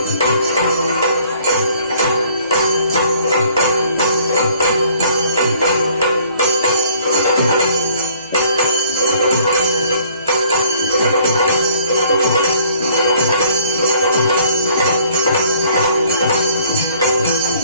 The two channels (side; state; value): both; inverted; correlation -0.59